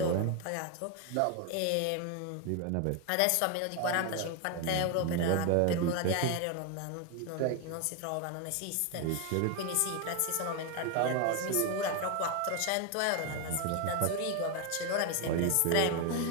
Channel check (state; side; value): different; both; correlation 0.01